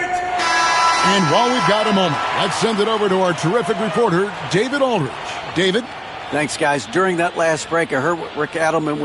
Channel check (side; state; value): both; identical; correlation 1.00